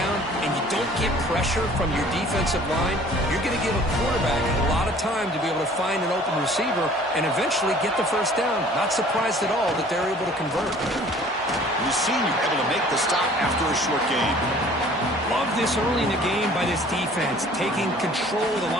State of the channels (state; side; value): normal; both; correlation 0.51